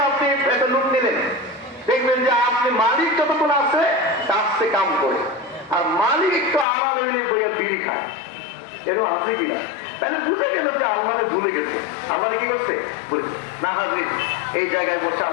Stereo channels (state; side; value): drops out; right; at 6.7 s